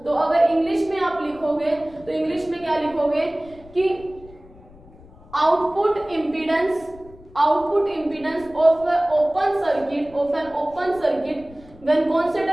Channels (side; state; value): left; noise; rumble, 22 dB below the sound